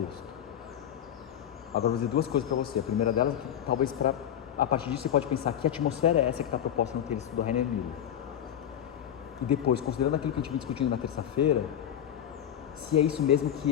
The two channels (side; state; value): right; quieter; 10.1 dB